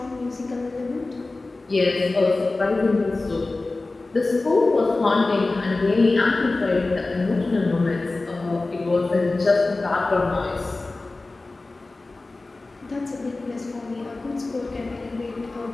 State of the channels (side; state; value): right; quieter; 3.3 dB